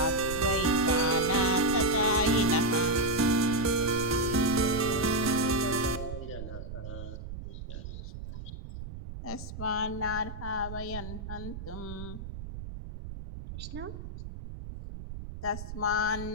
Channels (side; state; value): right; noise; rumble, 9 dB below the sound